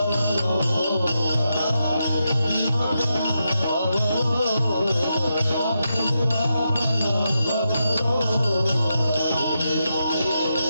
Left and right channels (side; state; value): both; inverted; correlation -0.85